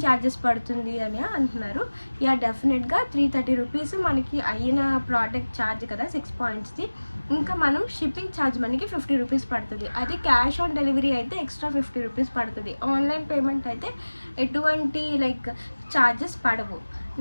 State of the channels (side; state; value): both; inverted; correlation -1.00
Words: ఛార్జెస్ పడుతుంది అని అంటున్నారు. యా డెఫినెట్గా 330 రూపీస్ మనకి అయిన ప్రోడక్ట్ ఛార్జ్ కదా 6 పాయింట్స్ది. ఇంకా మనం షిప్పింగ్ ఛార్జ్ మనకి 50 రూపీస్ పడుతుంది. అది క్యాష్ ఆన్ డెలివరీ అయితే ఎక్స్ట్రా 50 రూపీస్ పడుతుంది. ఆన్లైన్ పేమెంట్ అయితే ఎటువంటి లైక్ ఛార్జెస్ పడవు.